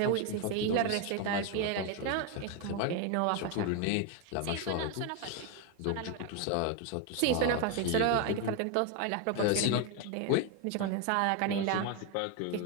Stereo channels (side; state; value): both; different; correlation 0.01